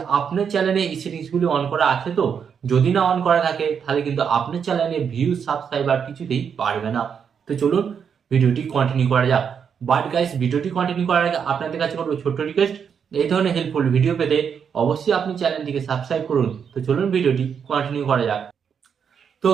আপনার চ্যানেলে এই সেটিংসগুলি অন করা আছে। তো যদি না অন করা থাকে তাহলে কিন্তু আপনার চ্যানেলে ভিউজ সাবস্ক্রাইবার কিছুতেই বাড়বে না। তো চলুন ভিডিওটি কন্টিনিউ করা যাক। বাট গাইস, ভিডিওটি কন্টিনিউ করার আগে আপনাদের কাছে করবো ছোট্ট রিকোয়েস্ট, এই ধরনের হেল্পফুল ভিডিও পেতে অবশ্যই আপনি চ্যানেলটিকে সাবস্ক্রাইব করুন। তো চলুন ভিডিওটি কন্টিনিউ করা যাক। তো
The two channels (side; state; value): left; quieter; 7.1 dB